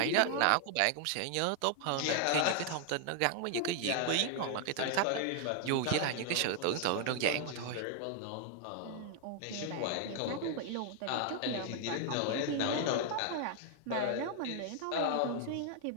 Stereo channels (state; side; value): different; both; correlation 0.00